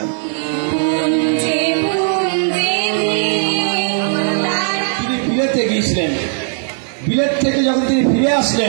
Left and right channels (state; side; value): silent; left; digital silence